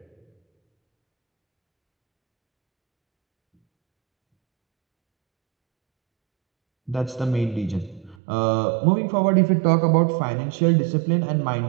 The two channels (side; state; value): left; drops out; at 8.2 s